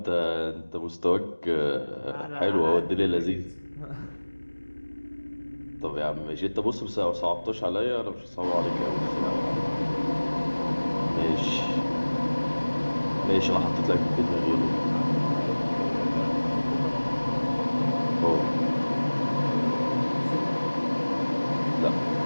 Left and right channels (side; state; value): both; inverted; correlation -1.00